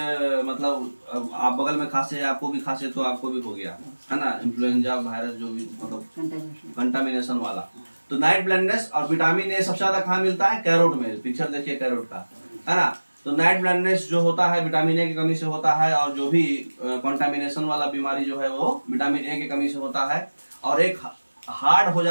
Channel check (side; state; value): both; inverted; correlation -1.00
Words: मतलब आप बगल में खांसे, आपको भी खांसे तो आपको भी हो गया, है ना, इन्फ्लुएंजा वायरस जो भी मतलब कंटामिनेशन वाला। तो नाइट ब्लाइंडनेस, और विटामिन ए सबसे ज्यादा कहाँ मिलता है, कैरोट में, पिक्चर देखिए कैरोट का, है ना। तो नाइट ब्लाइंडनेस जो होता है विटामिन ए की कमी से होता है, और जो भी कंटामिनेशन वाला बीमारी जो है वो विटामिन ए की कमी से होता है। और एक हार्ड हो